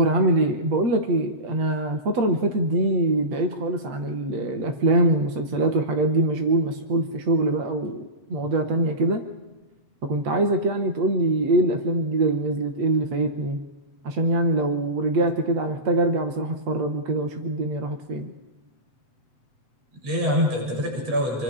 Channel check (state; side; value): late; left; 7.8 ms